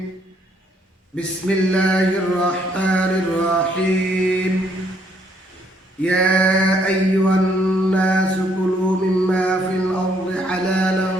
Bismillahirrahmanirrahim. Ya ayyuhan nasu kulu mimma fil ardi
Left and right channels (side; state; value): both; normal; correlation 0.69